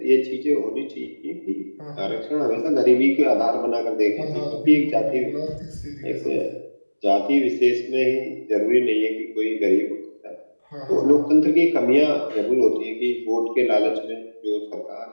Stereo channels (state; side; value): inverted; both; correlation -1.00